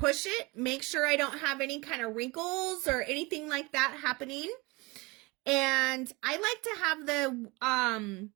it, make sure I don't have any kind of wrinkles or anything like that happening. And I like to have the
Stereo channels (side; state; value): left; quieter; 25.0 dB